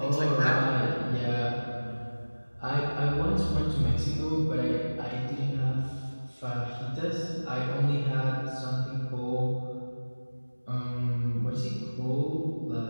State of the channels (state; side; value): inverted; both; correlation -1.00